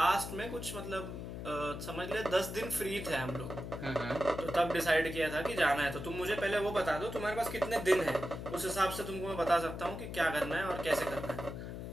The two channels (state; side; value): noise; left; hum, 7 dB below the sound